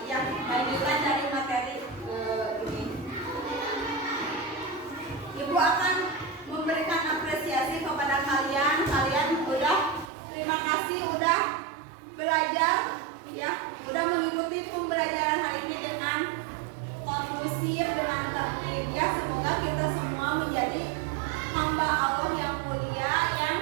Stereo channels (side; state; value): left; drops out; at 10.1 s